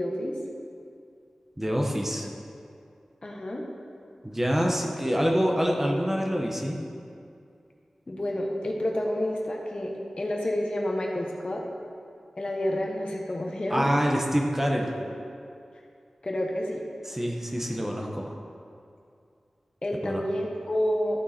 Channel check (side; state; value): both; normal; correlation 0.97